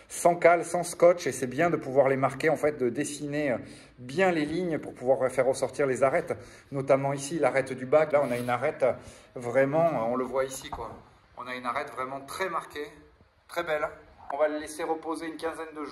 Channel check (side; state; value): both; identical; correlation 1.00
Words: sans cale, sans scotch, et c'est bien de pouvoir les marquer, en fait, de dessiner bien les lignes pour pouvoir faire ressortir les arêtes, notamment ici l'arête du bac. Là, on a une arête vraiment, on le voit ici quoi. On a une arête vraiment très marquée, très belle. On va le laisser reposer une quinzaine de